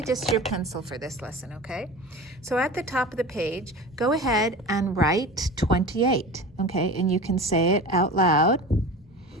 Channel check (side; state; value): both; normal; correlation 0.33